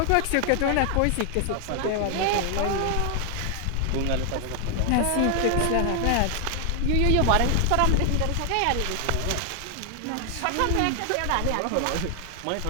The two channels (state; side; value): different; both; correlation 0.00